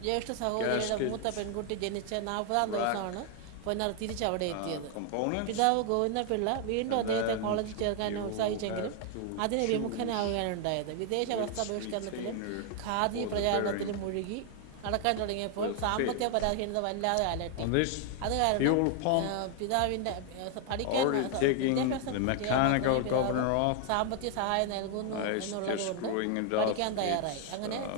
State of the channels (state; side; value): different; both; correlation 0.00